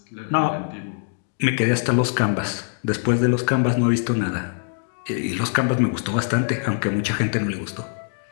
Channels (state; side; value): silent; right; digital silence